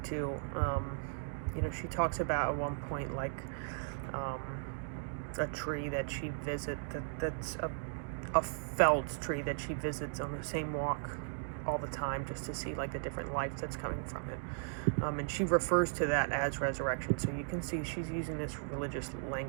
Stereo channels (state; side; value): silent; left; digital silence